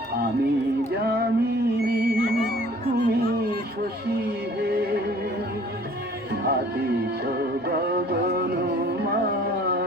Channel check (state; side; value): normal; both; correlation 0.52